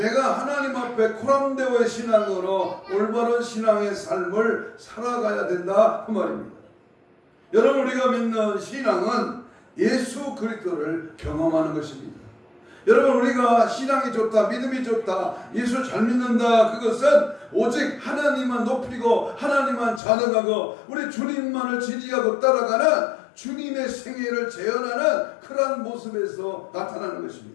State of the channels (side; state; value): right; drops out; at 20.0 s